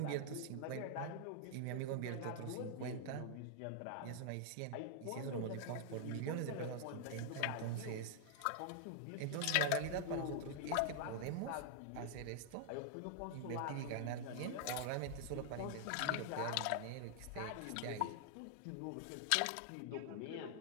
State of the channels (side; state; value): both; different; correlation -0.01